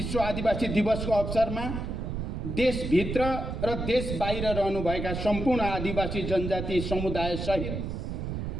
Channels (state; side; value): noise; right; rumble, 4 dB below the sound